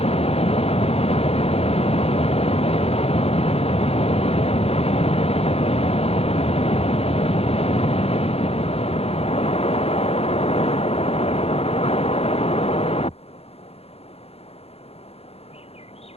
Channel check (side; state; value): right; late; 0.29 ms